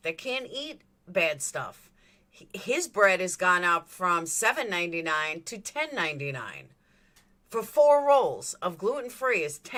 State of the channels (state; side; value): identical; both; correlation 1.00